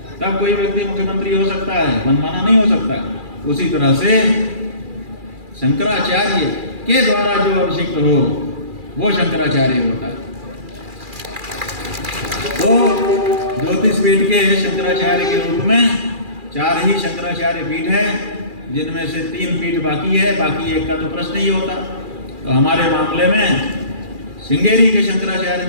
तब कोई व्यक्ति मुख्यमंत्री हो सकता है, मनमाना नहीं हो सकता। उसी तरह से शंकराचार्य के द्वारा जो अभिषिक्त हो वो शंकराचार्य होता है। तो ज्योतिषपीठ के शंकराचार्य के रूप में 4 ही शंकराचार्य पीठ है, जिनमें से 3 पीठ बाकी है, बाकी एक का तो प्रश्न ही होता। तो हमारे मामले में श्रृंगेरी के शंकराचार्य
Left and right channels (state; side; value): late; left; 2.4 ms